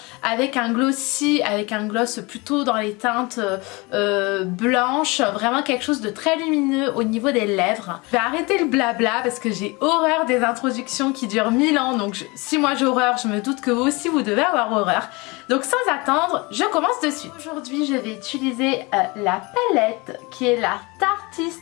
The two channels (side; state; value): right; quieter; 25.8 dB